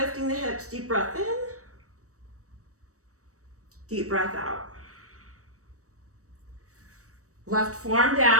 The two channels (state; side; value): late; left; 0.65 ms